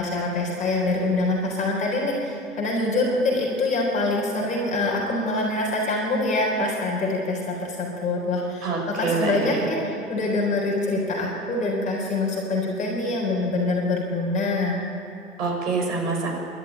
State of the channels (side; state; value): both; normal; correlation 0.33